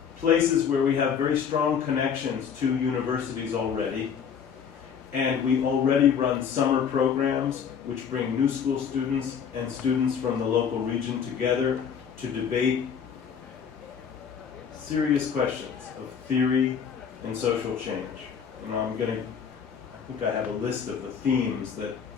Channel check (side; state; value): right; quieter; 7.3 dB